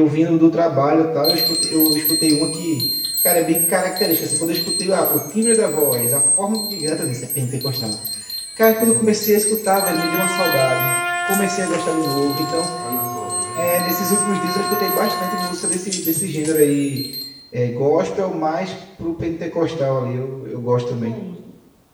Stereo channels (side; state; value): both; identical; correlation 1.00